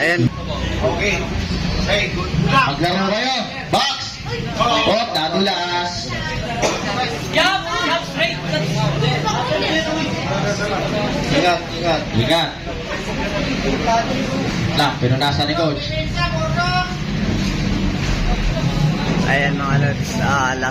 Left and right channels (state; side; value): identical; both; correlation 1.00